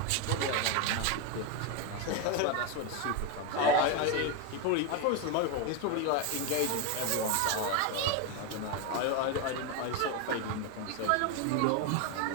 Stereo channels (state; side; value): different; both; correlation 0.02